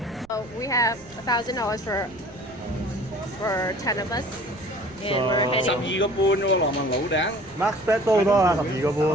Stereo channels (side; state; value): right; noise; rumble, 24 dB below the sound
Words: So we have $1,000 for 10 of us, and we're heading. 12個半喎，羅文老頂。Max bet 都好多啊，12個